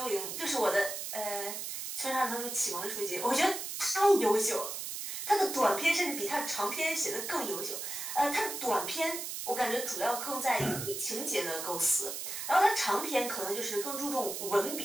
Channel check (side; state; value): right; noise; hiss, 5 dB below the sound